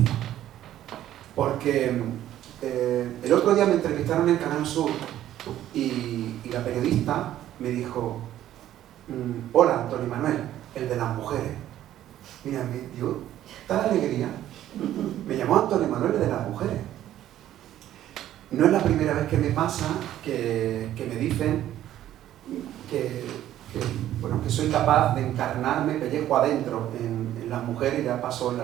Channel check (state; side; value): quieter; left; 12.5 dB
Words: Porque el otro día me entrevistaron en Canal Sur y la periodista me dijo: hola, Antonio Manuel, el de las mujeres. Mira, me dio tal alegría. Me llamó Antonio Manuel, el de las mujeres. No es la primera vez que me pasa que me dicen que soy capaz de encarnarme pellejo adentro en las mujeres. Ya pasó en La